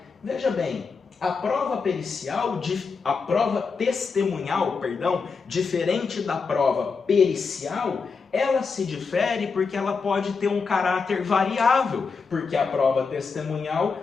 Veja bem, a prova pericial, a prova testemunhal, perdão, diferente da prova pericial, ela se difere porque ela pode ter um caráter variável, porque a prova testemunhal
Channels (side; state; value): right; quieter; 5.0 dB